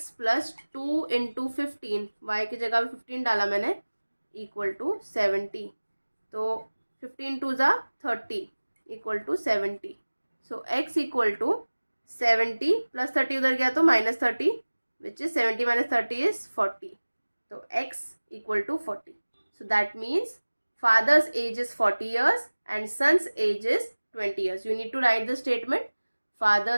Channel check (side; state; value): both; inverted; correlation -1.00